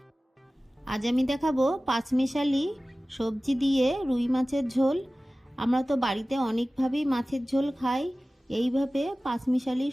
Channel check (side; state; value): both; normal; correlation 0.97